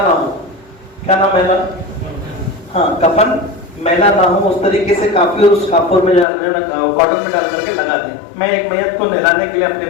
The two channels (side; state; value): right; drops out; at 6.2 s